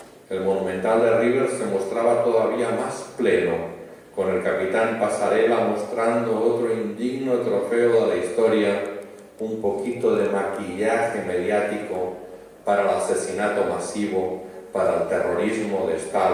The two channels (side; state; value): both; identical; correlation 1.00